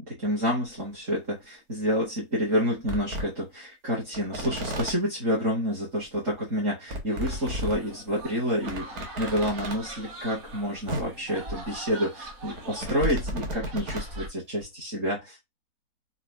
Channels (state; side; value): late; left; 3.8 ms